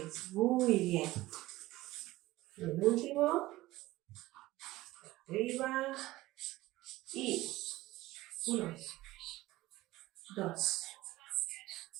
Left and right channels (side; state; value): left; quieter; 17.7 dB